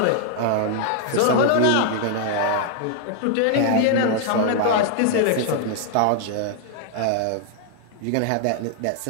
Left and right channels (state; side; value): different; both; correlation 0.00